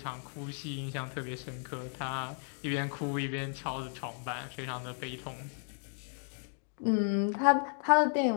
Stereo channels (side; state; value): right; silent; 55 dB below the other